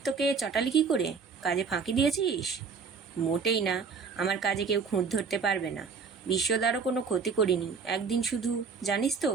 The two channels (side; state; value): left; quieter; 5.4 dB